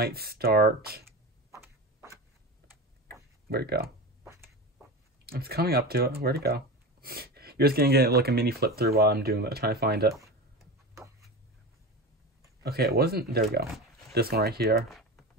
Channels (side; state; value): both; normal; correlation 0.26